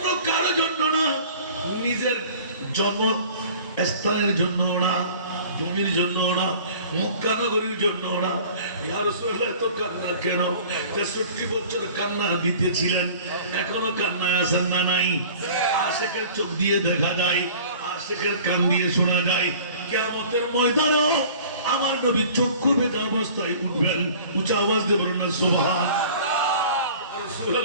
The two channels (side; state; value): both; inverted; correlation -0.46